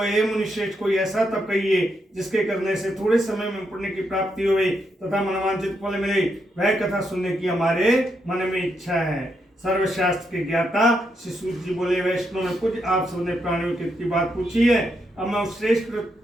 हे मुनिश्रेष्ठ, कोई ऐसा तप कहिए जिसके करने से थोड़े समय में पुण्य की प्राप्ति होवे तथा मनवांछित फल मिले। वह कथा सुनने की हमारे मन में इच्छा है। सर्वशास्त्र के ज्ञाता श्री सूत जी बोले, वैष्णव में कुछ आप सबने प्राणियों की बात पूछी है। अब मैं उस श्रेष्ठ व्रत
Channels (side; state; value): both; normal; correlation 0.80